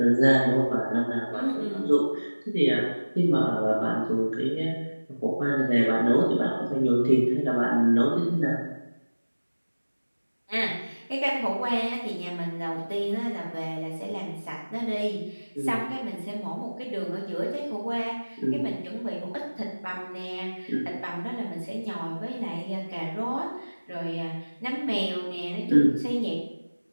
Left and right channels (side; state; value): both; inverted; correlation -1.00